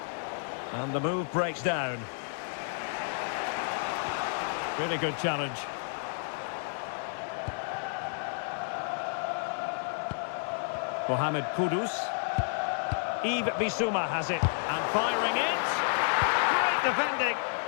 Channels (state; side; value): silent; right; 57 dB below the other